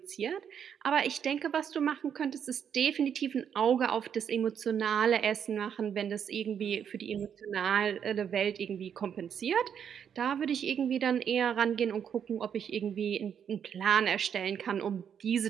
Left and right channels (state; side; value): quieter; left; 8.1 dB